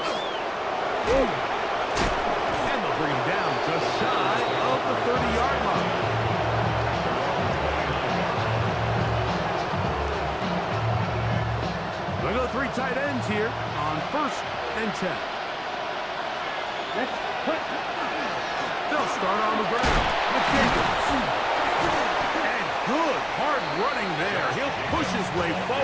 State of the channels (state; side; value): identical; both; correlation 1.00